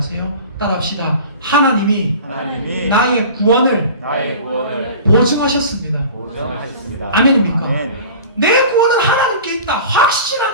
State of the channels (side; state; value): both; inverted; correlation -0.39